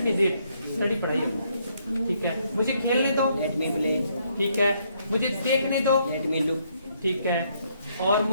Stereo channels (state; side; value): inverted; both; correlation -0.71